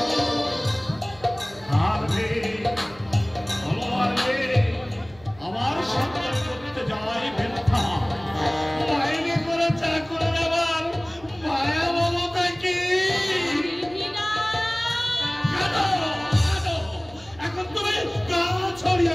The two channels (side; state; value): right; noise; hum, 24 dB below the sound